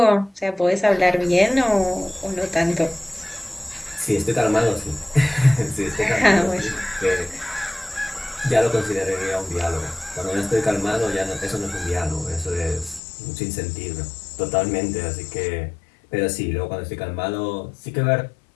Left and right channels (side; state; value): right; drops out; at 13.0 s